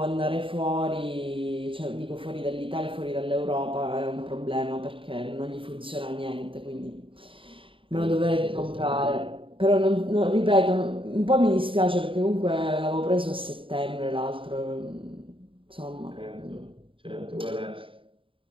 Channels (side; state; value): left; late; 0.25 ms